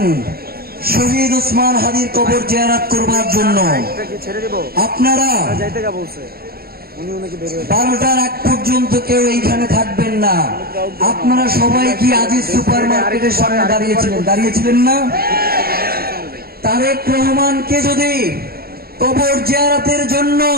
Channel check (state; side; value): late; left; 0.44 ms